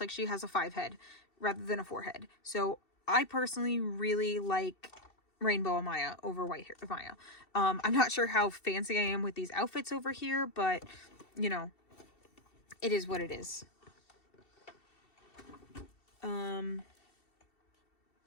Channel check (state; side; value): late; right; 2.7 ms